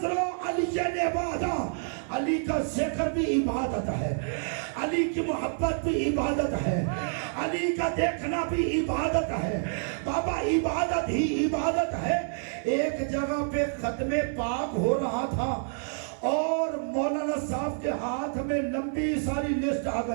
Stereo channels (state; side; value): silent; left; 56 dB below the other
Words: علی عبادہ، علی کا ذکر بھی عبادت ہے، علی کی محبت بھی عبادت ہے، علی کا دیکھنا بھی عبادت ہے بابا، عبادت ہی عبادت ہے۔ ایک جگہ پہ ختم پاک ہو رہا تھا اور مولانا صاحب کے ہاتھ میں لمبی ساری لسٹ آ